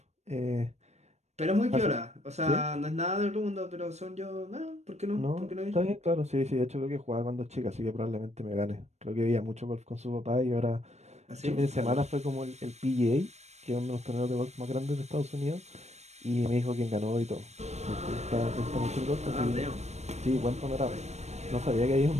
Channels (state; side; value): late; left; 0.32 ms